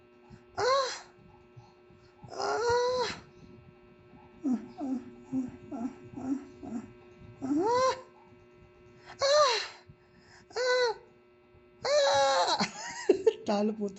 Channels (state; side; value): identical; both; correlation 1.00